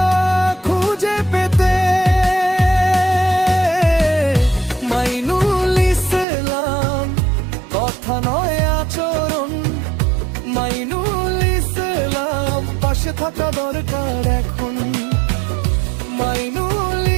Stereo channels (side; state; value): left; drops out; at 6.2 s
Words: খুঁজে পেতে। মাইনুল ইসলাম, কথা নয় আচরণ। মাইনুল ইসলাম, পাশে থাকা দরকার এখন। মাইনুল